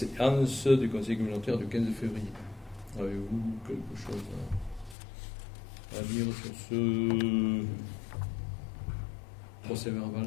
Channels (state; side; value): drops out; right; at 5.0 s